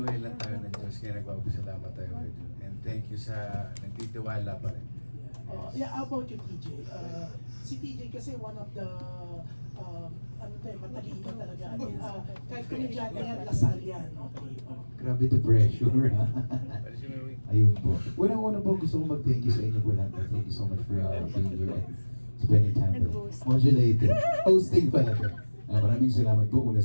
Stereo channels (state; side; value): inverted; both; correlation -1.00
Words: lang tayo ng Diyos, kaya nagpapasalamat tayo kay June. And thank you sa nagtitiwala pa rin. Yeah, how about you, TJ? Si TJ kasi one of the matalino talaga. Kahit komedyante yan, Lasal yan. Okay. Grabe the pressure. Ayun po. Unang-una po gusto kong mag-thank you sa inyo po lahat. Thank you so much for being here and spending time with us. Modulated. Hosting pala to. Maraming salamat po una